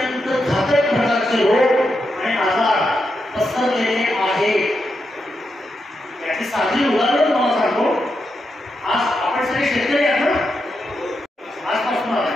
घातक प्रकारचे रोग आणि आजार पसरलेले आहेत. याची साधी उदाहरण तुम्हाला सांगतो. आज आपण सगळे शेतकरी आहात ना,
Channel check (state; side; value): normal; both; correlation 0.85